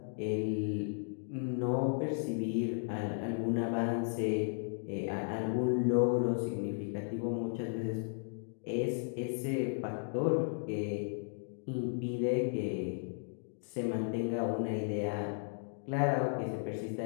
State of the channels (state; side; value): silent; right; digital silence